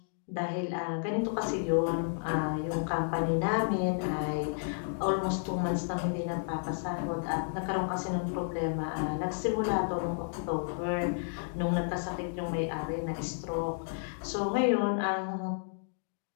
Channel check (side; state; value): right; silent; digital silence